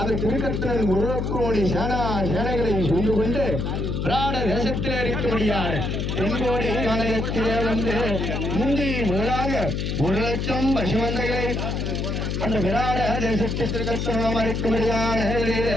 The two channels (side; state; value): left; noise; hum, 1 dB below the sound